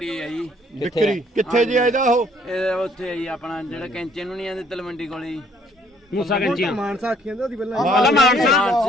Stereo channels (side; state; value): both; normal; correlation 0.63